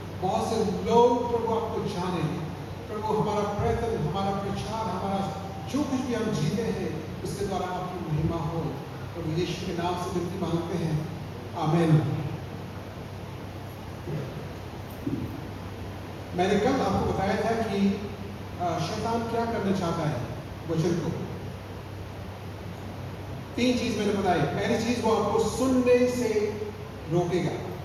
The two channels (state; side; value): identical; both; correlation 1.00